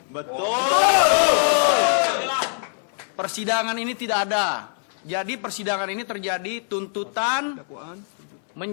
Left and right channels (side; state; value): right; silent; 63 dB below the other